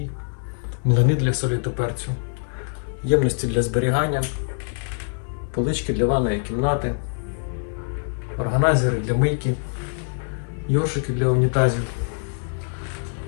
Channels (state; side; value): silent; right; digital silence